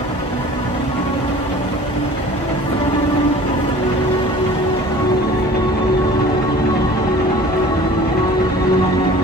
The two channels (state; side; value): normal; both; correlation 0.45